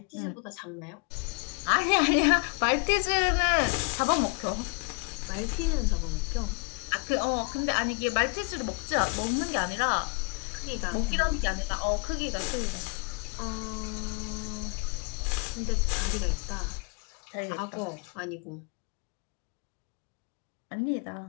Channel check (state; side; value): quieter; right; 31.7 dB